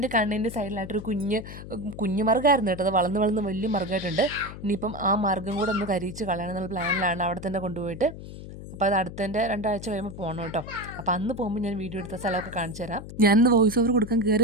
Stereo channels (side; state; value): left; noise; hum, 12 dB below the sound